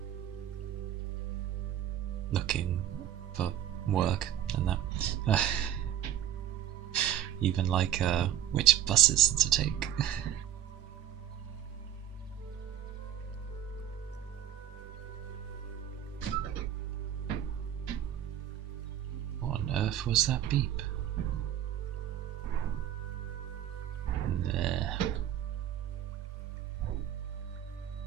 looking for work and that. Even like which buses to take. What on earth was that beep? There.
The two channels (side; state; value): left; quieter; 11.1 dB